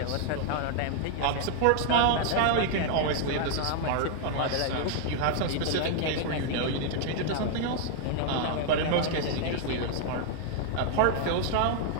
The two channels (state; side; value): different; both; correlation 0.00